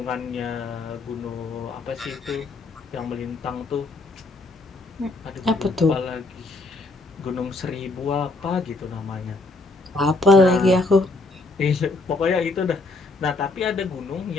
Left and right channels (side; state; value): right; quieter; 3.2 dB